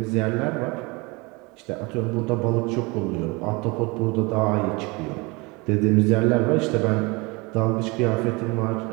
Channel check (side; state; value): left; quieter; 26.4 dB